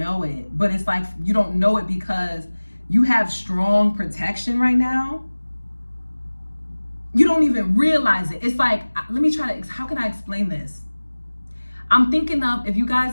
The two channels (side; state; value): both; inverted; correlation -1.00